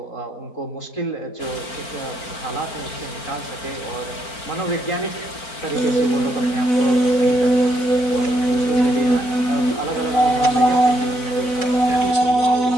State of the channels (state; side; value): late; right; 4.4 ms